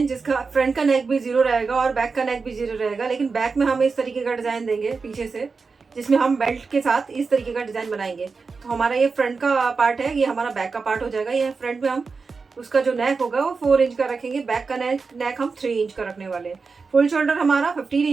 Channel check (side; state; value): left; quieter; 4.7 dB